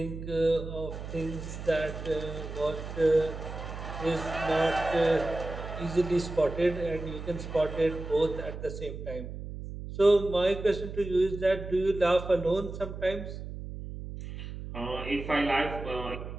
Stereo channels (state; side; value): noise; right; hum, 9 dB below the sound